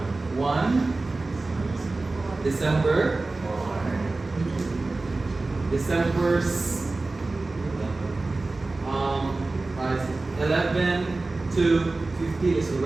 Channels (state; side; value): quieter; left; 3.3 dB